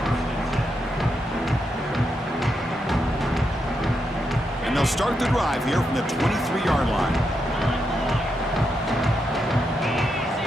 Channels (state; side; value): normal; both; correlation 0.83